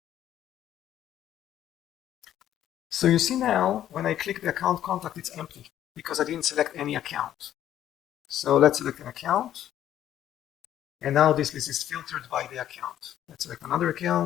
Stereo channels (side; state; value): right; quieter; 11.5 dB